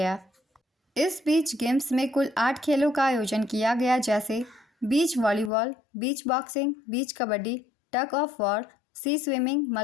इस बीच गेम्स में कुल 8 खेलों का आयोजन किया गया, जैसे beach volleyball, beach boxing, beach kabaddi, tug of war, sea swimming,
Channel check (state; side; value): drops out; right; at 5.5 s